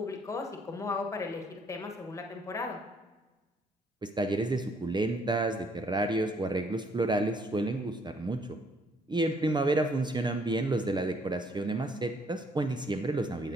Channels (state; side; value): normal; both; correlation 0.65